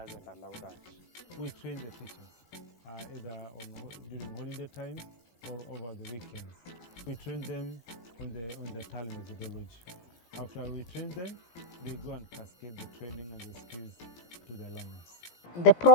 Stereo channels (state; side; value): late; right; 17 ms